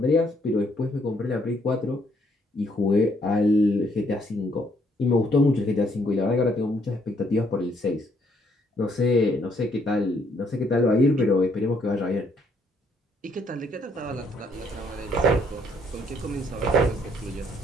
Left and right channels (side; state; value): both; normal; correlation 0.69